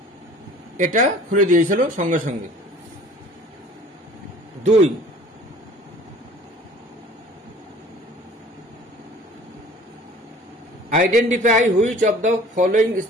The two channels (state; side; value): normal; both; correlation 0.49